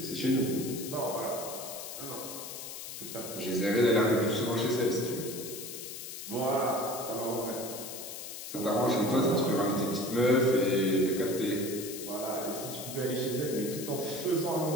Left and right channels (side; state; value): left; noise; hiss, 9 dB below the sound